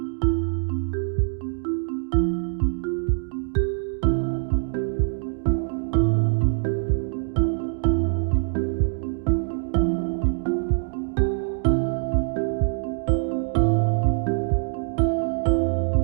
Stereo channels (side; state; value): left; silent; digital silence